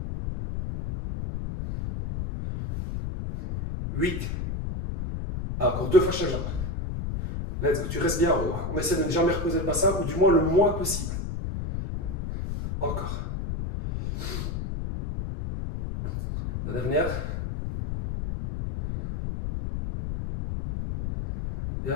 8. Ah, encore 2 fois chaque jambe. Let's go. Tu restes bien en haut. On essaie de ne jamais reposer le bassin, ou du moins le moins possible. Encore. La dernière.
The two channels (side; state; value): left; noise; rumble, 4 dB below the sound